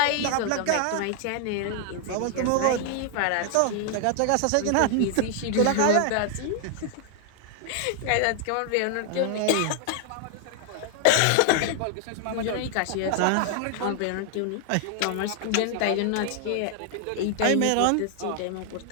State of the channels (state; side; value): different; both; correlation 0.00